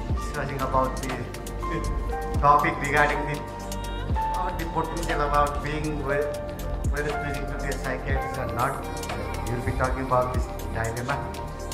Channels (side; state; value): both; identical; correlation 1.00